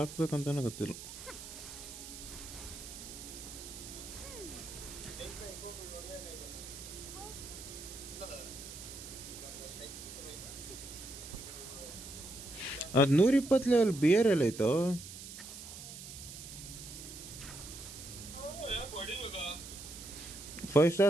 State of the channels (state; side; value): noise; right; hiss, 12 dB below the sound